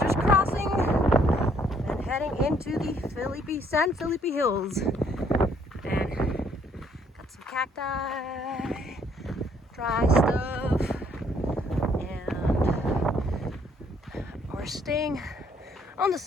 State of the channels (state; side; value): normal; both; correlation 0.66